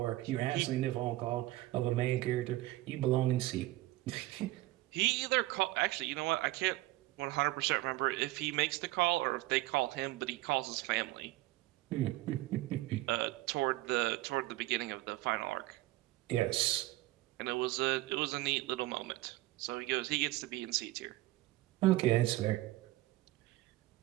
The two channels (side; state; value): left; quieter; 18.2 dB